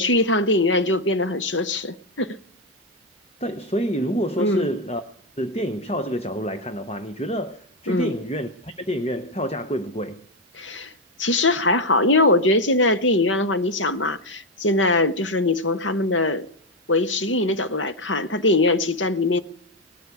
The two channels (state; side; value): normal; both; correlation 0.06